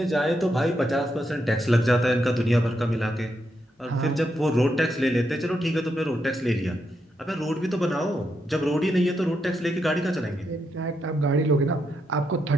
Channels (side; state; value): both; normal; correlation 0.81